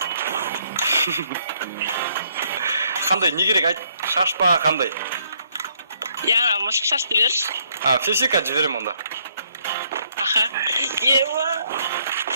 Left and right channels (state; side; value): inverted; both; correlation -0.69